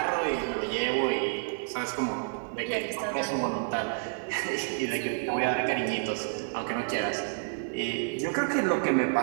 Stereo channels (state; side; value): silent; left; digital silence